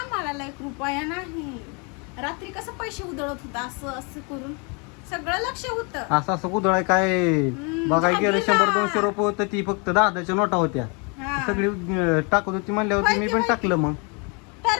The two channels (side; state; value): right; quieter; 33.5 dB